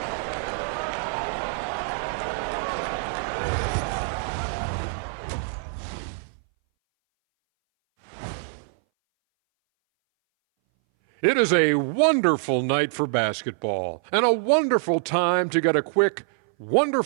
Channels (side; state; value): left; silent; 60 dB below the other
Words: It is a wonderful night for basketball and a wonderful time to get a quick,